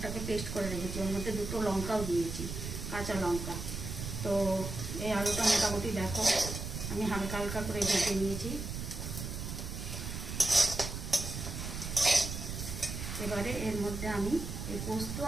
পেস্ট করে রেখেছি। ওর মধ্যে দুটো লঙ্কাও দিয়েছি, কাঁচা লঙ্কা। তো এই আলুটা মোটামুটি দেখো আমি হালকা হালকা করে ভেজে নিয়েছি। এবারে এর মধ্যে আমি এই পোস্ত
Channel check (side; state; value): right; noise; rumble, 6 dB below the sound